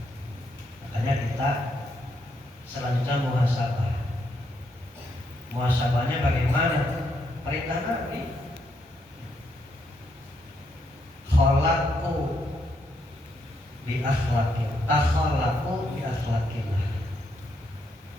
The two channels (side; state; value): both; normal; correlation 0.77